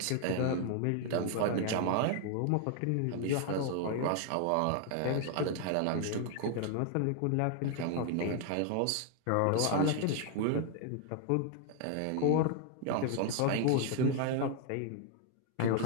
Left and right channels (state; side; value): different; both; correlation 0.00